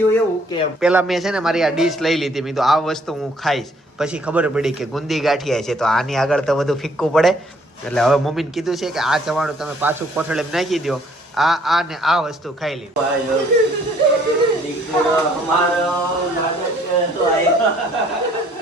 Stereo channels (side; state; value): both; normal; correlation 0.62